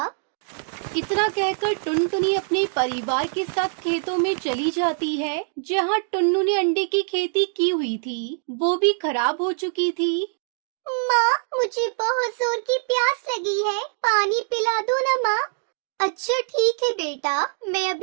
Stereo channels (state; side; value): silent; left; digital silence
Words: इतना कहकर टुनटुनी अपने परिवार के साथ खेतों में चली जाती है, जहाँ टुन्नू ने अंडे की खेती की हुई थी, वो भी खराब हो चुकी थी। माँ, मुझे बहुत जोर की प्यास लगी है, पानी पिला दो ना माँ। अच्छा ठीक है बेटा, मैं